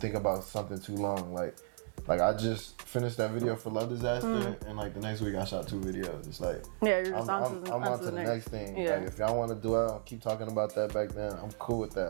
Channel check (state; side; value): silent; left; digital silence